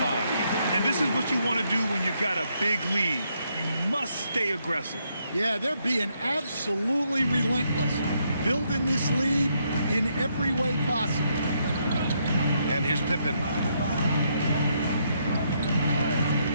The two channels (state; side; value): inverted; both; correlation -0.76